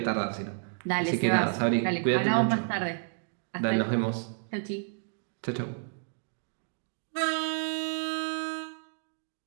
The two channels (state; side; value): silent; left; 57 dB below the other